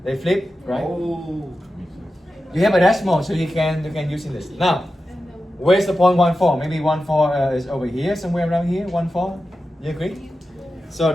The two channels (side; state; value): both; normal; correlation 0.92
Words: They flip, right? Oh. You have a decimal, so you can use in this. Now, where's the point 1, 4? Maybe 1, 4 is over here, somewhere around here. 1, 4. You agree? So,